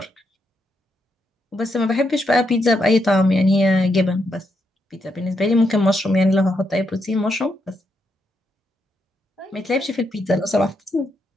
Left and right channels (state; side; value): normal; both; correlation 0.80